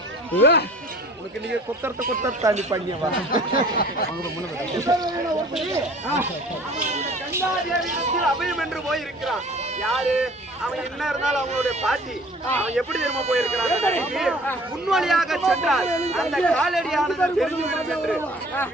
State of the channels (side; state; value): both; normal; correlation 0.50